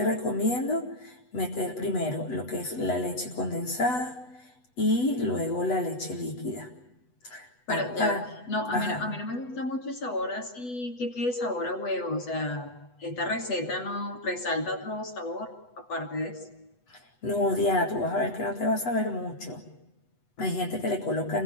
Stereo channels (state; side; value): late; right; 8.1 ms